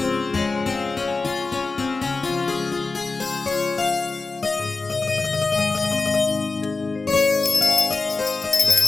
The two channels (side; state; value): right; quieter; 3.8 dB